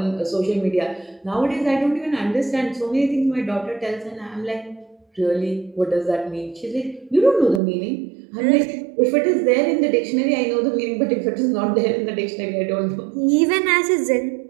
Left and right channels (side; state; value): left; drops out; at 7.6 s